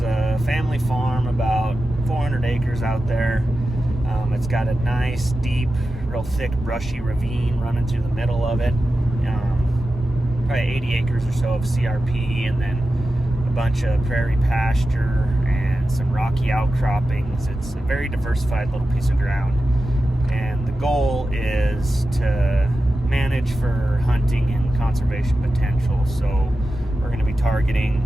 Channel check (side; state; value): both; normal; correlation 0.92